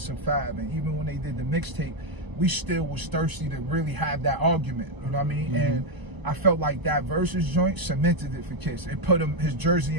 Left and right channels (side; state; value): left; late; 1.0 ms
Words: and Fab. And even when they did the mixtape, we still was thirsty to really have that argument, you know what I mean? And I felt like that Versus joint cemented it for Kiss. It put his jersey